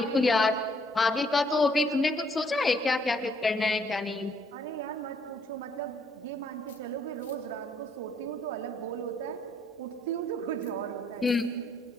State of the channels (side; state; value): both; normal; correlation 0.67